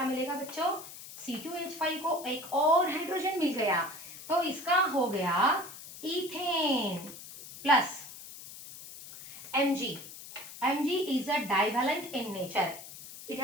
मिलेगा बच्चों? C2H5 को एक और हाइड्रोजन मिल गया, तो इसका हो गया ethane plus Mg. Mg is a divalent in nature. It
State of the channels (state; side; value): noise; left; hiss, 14 dB below the sound